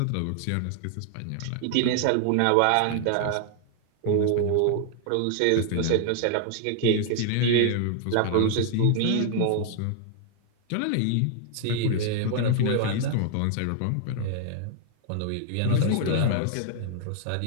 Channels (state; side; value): different; both; correlation 0.00